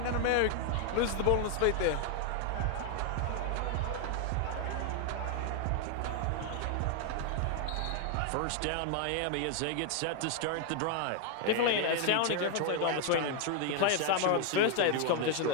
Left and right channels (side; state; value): both; different; correlation 0.00